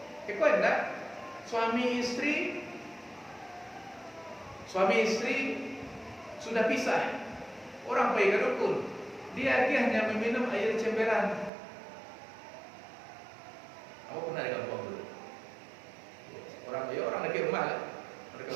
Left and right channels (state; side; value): drops out; left; at 11.5 s